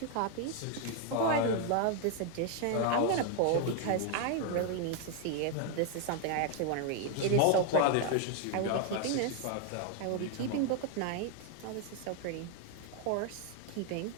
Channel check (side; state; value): both; different; correlation 0.01